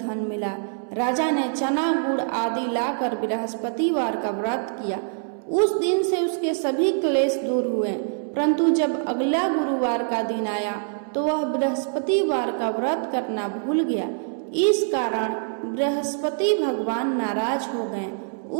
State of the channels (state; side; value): silent; left; digital silence